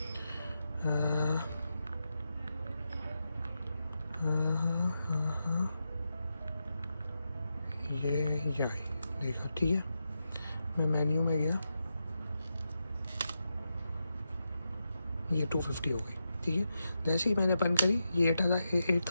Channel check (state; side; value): inverted; both; correlation -0.87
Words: ये देखा, ठीक है, मैं मेन्यू में गया, ये 250 हो गई, ठीक है। जैसे ही मैंने बंद करी ये